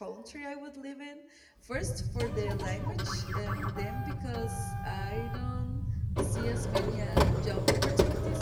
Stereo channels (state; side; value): identical; both; correlation 1.00